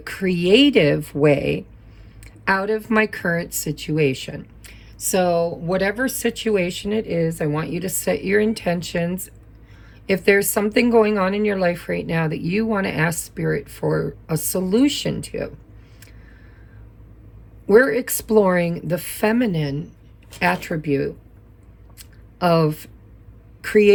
way out of my current situation? So whatever situation it is, I want you to set your intentions. If there's something going on in your life right now that you want to ask Spirit for a solution to, we're exploring the feminine attribute of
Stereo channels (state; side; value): identical; both; correlation 1.00